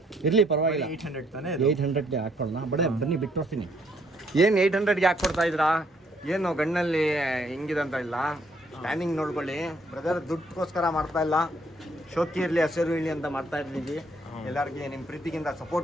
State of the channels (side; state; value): both; normal; correlation 0.68